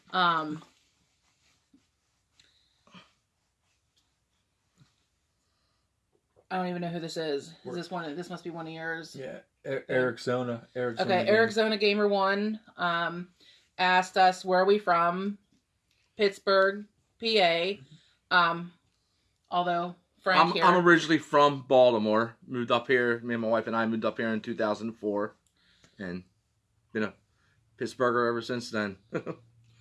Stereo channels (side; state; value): both; identical; correlation 1.00